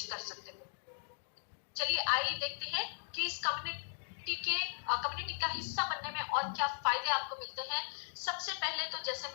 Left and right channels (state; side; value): silent; right; digital silence